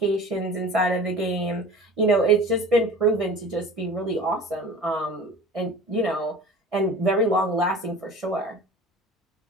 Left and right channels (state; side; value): normal; both; correlation 0.40